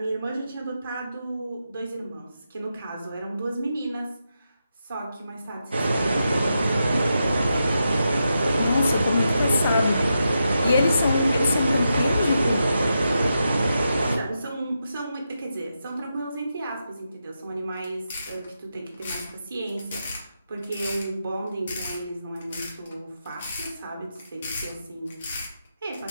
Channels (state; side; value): inverted; both; correlation -0.86